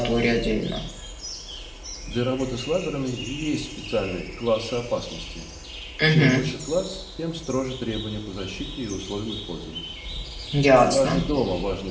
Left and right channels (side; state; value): both; identical; correlation 1.00